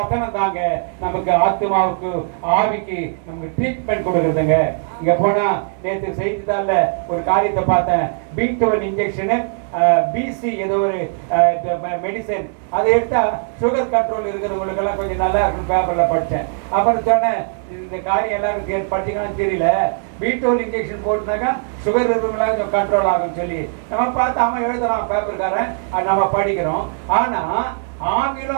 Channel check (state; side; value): silent; left; digital silence